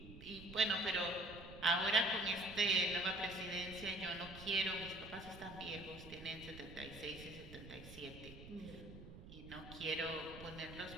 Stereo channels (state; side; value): noise; right; rumble, 14 dB below the sound